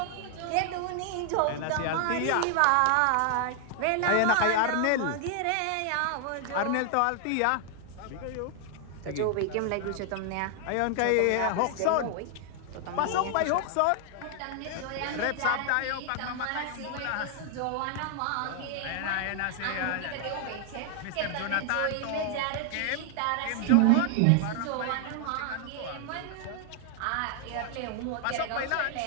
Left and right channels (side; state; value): both; different; correlation 0.00